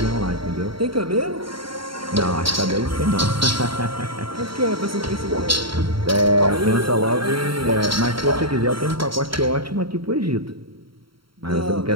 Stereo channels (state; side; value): late; left; 0.74 ms